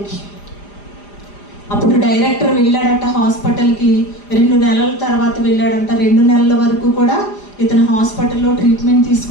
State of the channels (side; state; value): right; late; 4.9 ms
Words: అప్పుడు డైరెక్టర్ వెళ్ళాడట హాస్పిటల్కి. 2 నెలల తర్వాత వెళ్ళాడంట. 2 నెలల వరకు కూడా ఇతను హాస్పిటల్లో ట్రీట్మెంట్